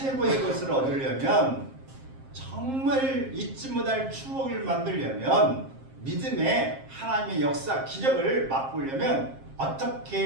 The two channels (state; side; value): late; left; 7.5 ms